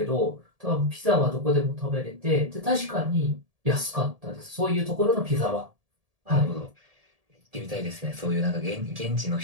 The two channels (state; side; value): late; left; 1.7 ms